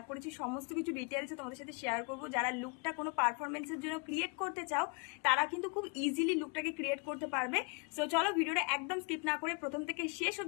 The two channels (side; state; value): right; quieter; 35.3 dB